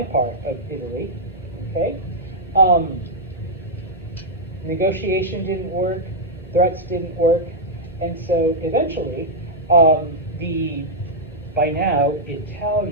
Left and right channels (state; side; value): normal; both; correlation -0.05